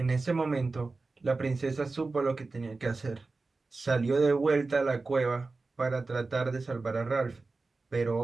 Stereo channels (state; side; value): quieter; left; 3.7 dB